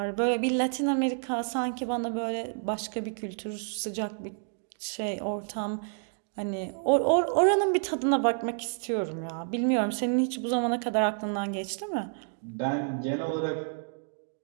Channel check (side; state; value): left; silent; 57 dB below the other